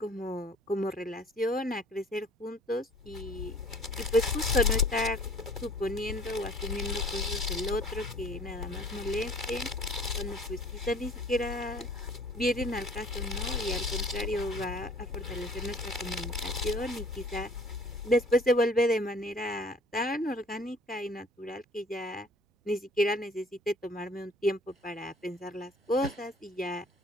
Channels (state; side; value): normal; both; correlation 0.52